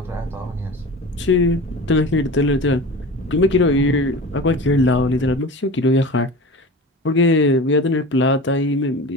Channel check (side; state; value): both; normal; correlation 0.33